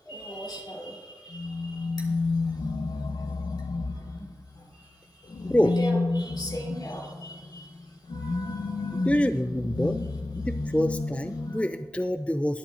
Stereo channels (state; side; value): normal; both; correlation 0.95